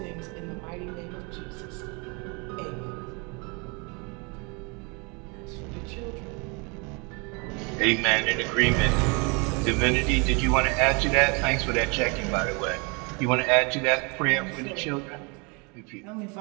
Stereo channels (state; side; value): quieter; left; 31.2 dB